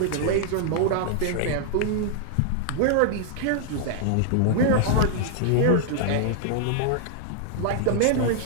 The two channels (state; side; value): different; both; correlation -0.01